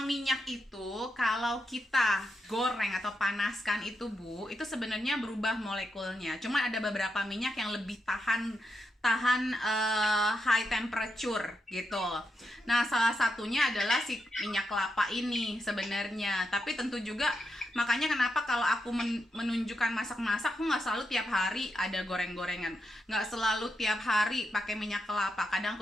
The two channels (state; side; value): normal; both; correlation 0.85